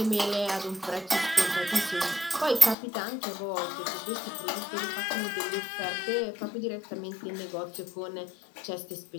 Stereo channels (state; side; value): drops out; right; at 2.8 s